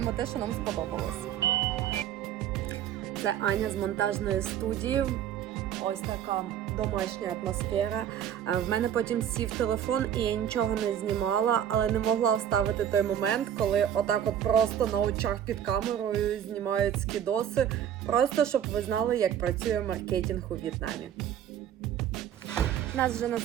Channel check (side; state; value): left; quieter; 10.0 dB